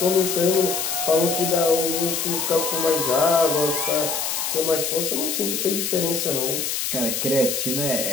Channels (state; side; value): noise; left; hiss, 1 dB below the sound